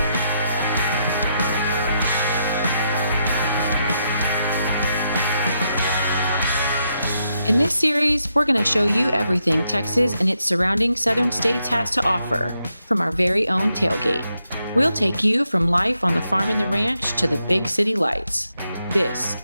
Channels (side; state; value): both; inverted; correlation -0.81